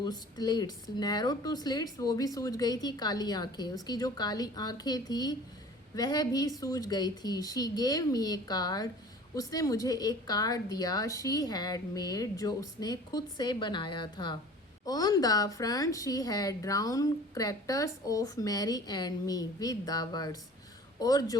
slits, narrow to slits, वो भी सूज गई थी, काली आंखें, उसकी जो काली आंखें थी वह भी सूज गई थी। She gave me A card, उसने मुझे एक कार्ड दिया। शी हैड मेड, जो उसने खुद से बनाया था। On the front she had drawn characters of Mary and me with the words, और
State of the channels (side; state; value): both; normal; correlation 0.45